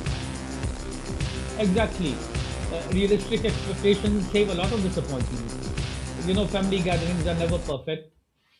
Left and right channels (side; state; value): both; identical; correlation 1.00